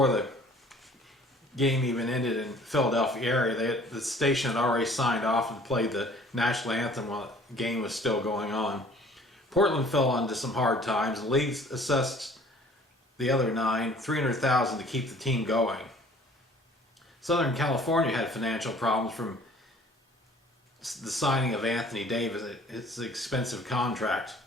the game even ended in Philadelphia area, the station had already signed off and played the national anthem while the game was still going on. Portland fell into some hard times. The league assessed the other 9, $300,000 to keep the team going. Southern California had financial problems from the signing of Anthony Davis. It's an expensive contract.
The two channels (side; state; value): both; normal; correlation 0.53